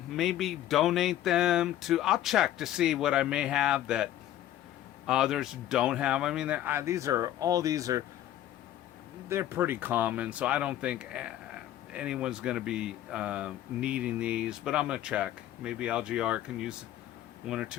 maybe donate them to. I'll check to see what I may have that others don't have. I mean, they're pretty common, so I don't think anyone's going to be needing these, but I'm going to check. Maybe LGR can use one or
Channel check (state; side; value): quieter; right; 12.6 dB